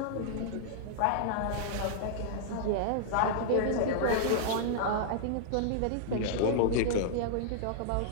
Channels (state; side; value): different; both; correlation -0.01